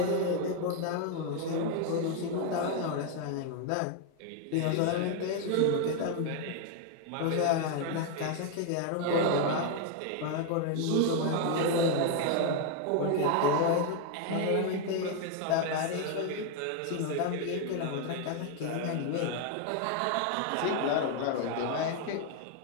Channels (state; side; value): different; both; correlation 0.01